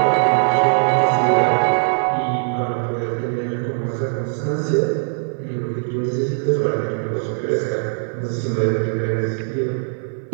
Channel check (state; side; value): silent; left; 57 dB below the other